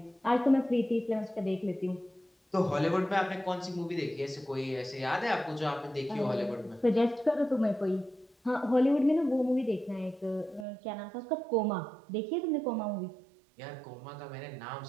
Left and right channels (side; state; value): left; drops out; at 10.7 s